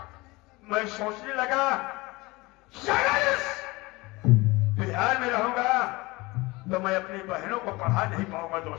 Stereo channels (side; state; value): right; quieter; 22.7 dB